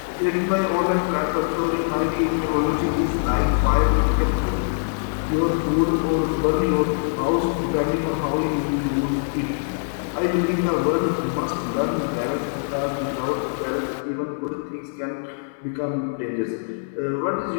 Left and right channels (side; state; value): right; silent; 62 dB below the other